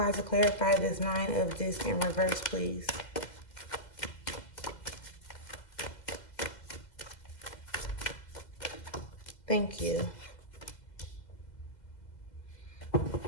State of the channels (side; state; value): right; late; 2.0 ms